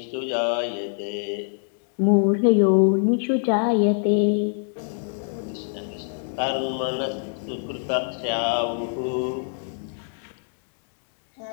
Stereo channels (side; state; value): right; silent; digital silence